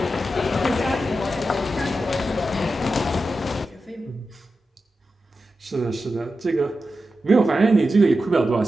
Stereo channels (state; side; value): normal; both; correlation 0.91